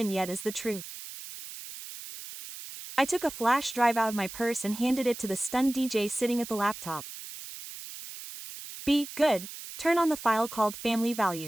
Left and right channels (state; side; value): noise; right; hiss, 12 dB below the sound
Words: yet is the truth. I took a flash drive out of my purse and handed it to the stunned DJ sitting at the laptop. Be good, turn on the file called Family